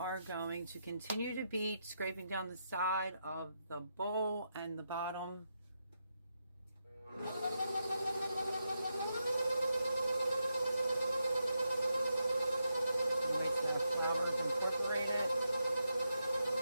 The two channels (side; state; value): both; inverted; correlation -0.84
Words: going to continue to beat, scraping down the side of the bowl and the bottom. Wait till the flour is incorporated.